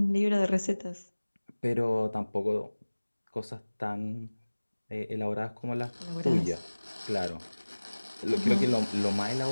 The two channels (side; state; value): both; inverted; correlation -1.00